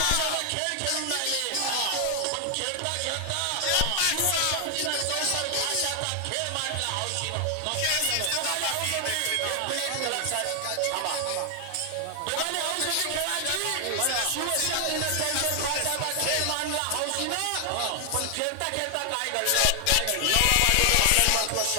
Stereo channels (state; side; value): different; both; correlation 0.00